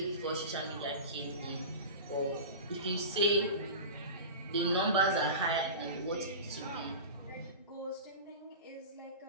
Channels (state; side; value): inverted; both; correlation -0.30